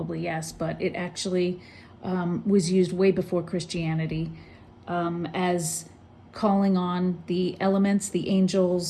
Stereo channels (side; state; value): both; identical; correlation 1.00